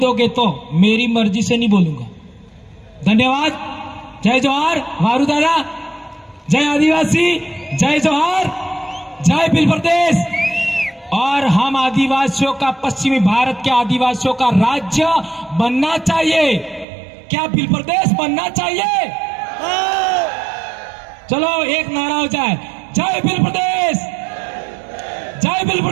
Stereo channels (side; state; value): left; drops out; at 16.9 s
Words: तो, मेरी मर्जी से नहीं बोलूंगा। धन्यवाद। जय जोहार वारू दादा, जय आदिवासी, जय जोहार, जय बिल प्रदेश। और हम आदिवासियों का, पश्चिमी भारत के आदिवासियों का राज्य बनना चाहिए। क्या बिल प्रदेश बनना चाहिए? चलो एक नारा हो जाए, जय बिल प्रदेश, जय बिल